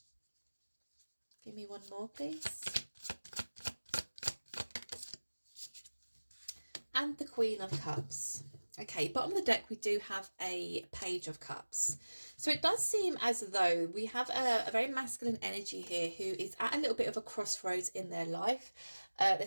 Give me one more, please. And the Queen of Cups. Okay, bottom of the deck, we do have a Page of Cups. So it does seem as though we have a very masculine energy here who is at a little bit of a crossroads in their life. They're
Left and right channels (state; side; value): inverted; both; correlation -1.00